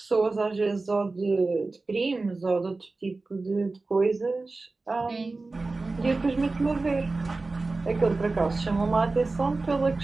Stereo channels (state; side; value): quieter; left; 3.5 dB